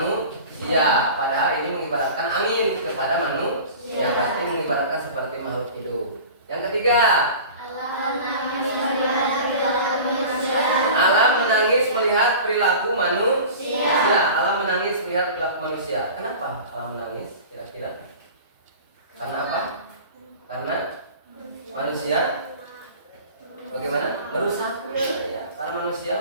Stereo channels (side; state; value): both; inverted; correlation -0.38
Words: Padahal ini mengibaratkan angin kepada manusia, berarti mengibaratkan seperti makhluk hidup. Yang ketiga, alam menangis melihat perilaku manusia. Alam menangis melihat perilaku manusia. Kenapa alam menangis? Kira-kira? Karena apa? Karena manusia bagaimana? Merusaknya. Ya, karena manusia